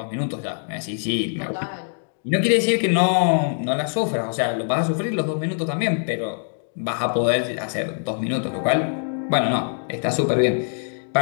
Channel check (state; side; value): silent; right; digital silence